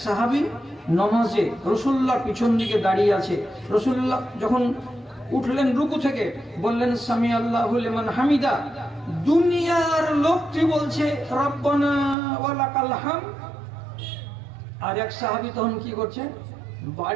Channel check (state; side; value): drops out; left; at 12.2 s